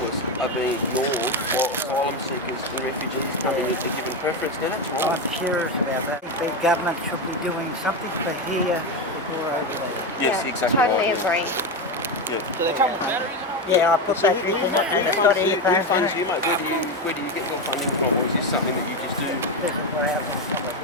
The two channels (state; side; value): normal; both; correlation 0.14